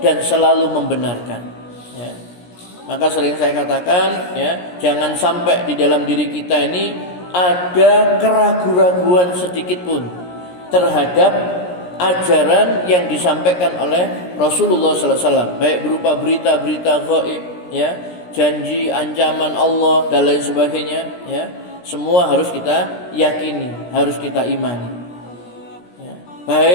selalu membenarkan, ya. Maka sering saya katakan, ya, jangan sampai di dalam diri kita ini ada keraguan-raguan sedikit pun terhadap ajaran yang disampaikan oleh Rasulullah sallallahu alaihi wasallam, baik berupa berita-berita gaib, ya, janji, ancaman Allah dan lain sebagainya, ya. Semua harus kita yakini, harus kita imani.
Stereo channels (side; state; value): right; late; 17 ms